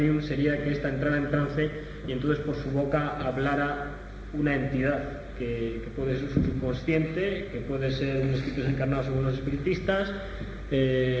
sería que ésta entrara en trance y entonces por su boca hablara una entidad que puede ser subconsciente, que puede ser un espíritu desencarnado según los espiritistas,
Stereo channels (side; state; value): both; identical; correlation 1.00